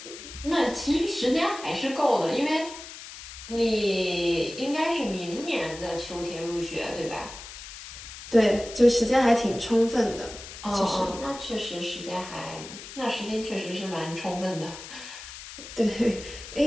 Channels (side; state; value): left; noise; hiss, 13 dB below the sound